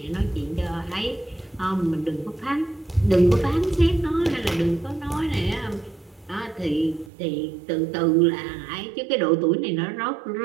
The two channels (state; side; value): drops out; left; at 7.1 s